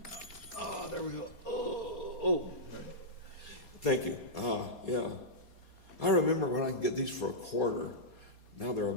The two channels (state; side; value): late; right; 4.2 ms